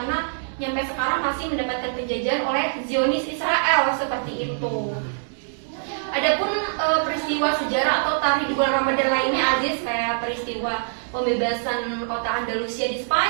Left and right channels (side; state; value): left; silent; digital silence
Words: sampai sekarang masih mendapatkan penjajahan oleh Zionis Israel seperti itu. Adapun peristiwa sejarah atau tarikh di bulan Ramadan lainnya Aziz, kayak peristiwa pembebasan kota Andalusia di